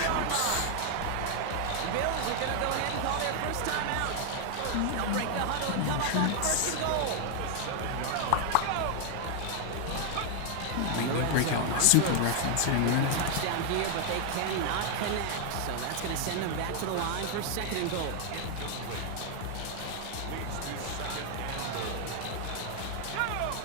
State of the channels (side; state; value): both; different; correlation 0.00